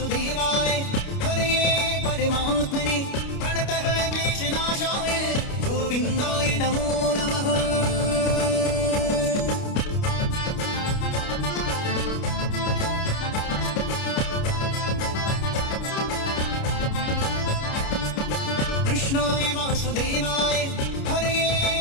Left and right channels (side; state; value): right; late; 29 ms